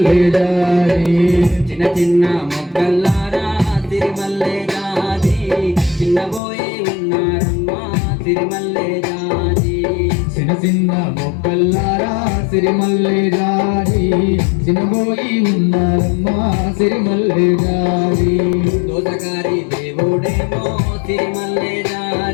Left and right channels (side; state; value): right; drops out; at 6.4 s